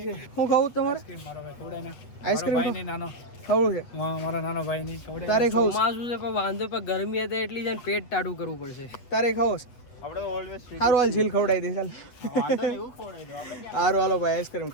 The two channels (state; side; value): late; right; 8.2 ms